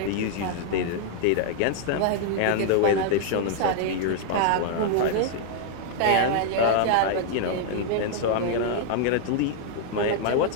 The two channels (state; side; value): different; both; correlation 0.00